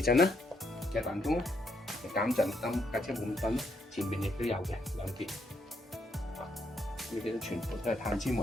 震啦，嘅彈弓啦，減震燈架車冇咁震啦，前面亦都有嘅2邊。呢啲都全部都係碳纖維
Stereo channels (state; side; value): normal; both; correlation 0.76